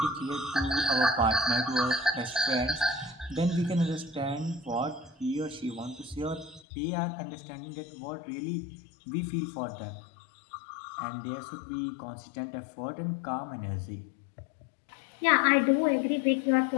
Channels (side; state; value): right; drops out; at 6.6 s